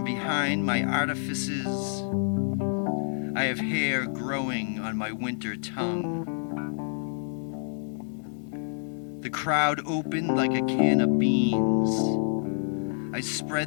behind my artifices. I have hair growing on my winter tongue. The crowd opened like a can of beans. I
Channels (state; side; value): silent; right; 59 dB below the other